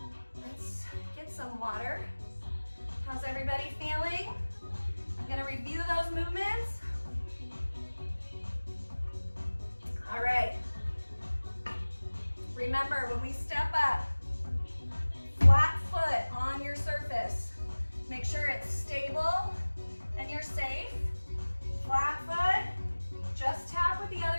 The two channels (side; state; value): both; inverted; correlation -1.00